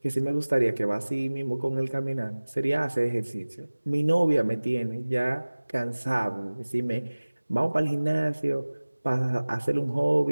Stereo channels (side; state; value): both; inverted; correlation -1.00